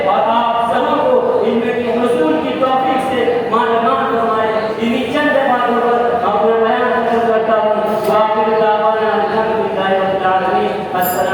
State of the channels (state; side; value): identical; both; correlation 1.00